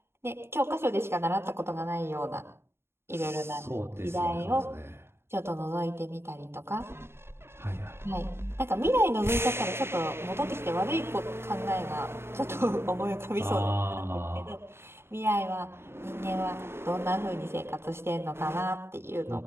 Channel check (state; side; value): late; left; 0.12 ms